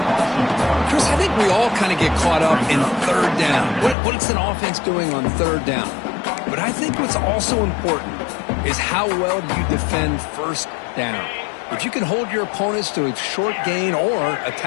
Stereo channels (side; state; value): right; drops out; at 4.0 s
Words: Chris, I think we all kind of get caught up in third down. What's an offense doing on third down? But I think what's also important is how well do you defend first down. If you can hold your opponents to a short gain or a